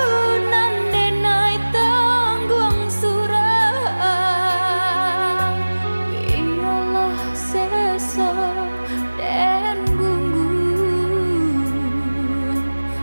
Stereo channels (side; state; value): both; inverted; correlation -1.00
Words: nan denai tanggung surah. Biarlah sesa dan gunggung